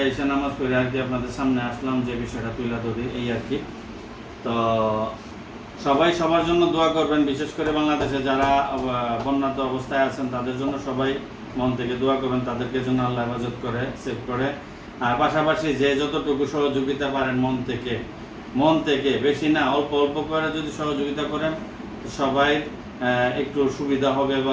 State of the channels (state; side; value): identical; both; correlation 1.00